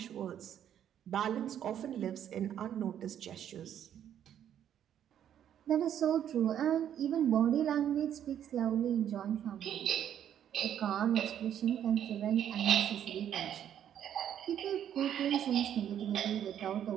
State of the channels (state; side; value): quieter; left; 10.0 dB